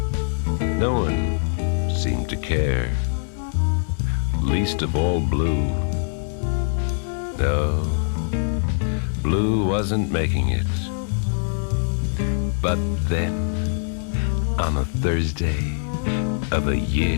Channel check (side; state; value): right; silent; 56 dB below the other